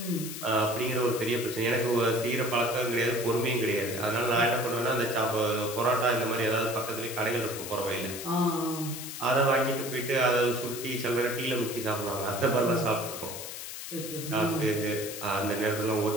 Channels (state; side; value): noise; left; hiss, 8 dB below the sound